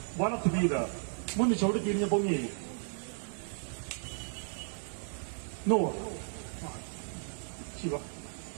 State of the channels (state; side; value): silent; left; digital silence